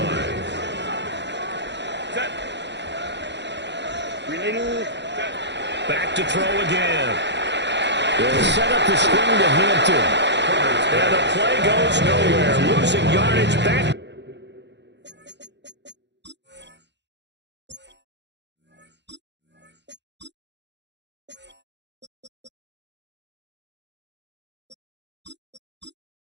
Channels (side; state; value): left; late; 0.51 ms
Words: Back to throw again. They'll set up the screen to Hampton. And the play goes nowhere. Losing yardage back.